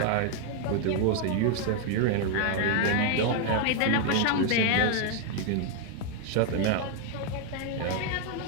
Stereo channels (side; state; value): both; different; correlation 0.00